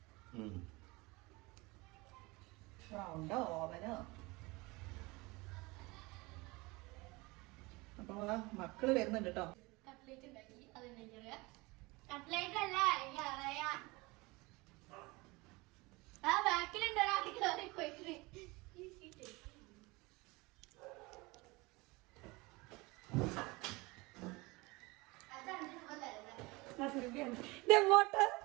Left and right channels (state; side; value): quieter; left; 23.9 dB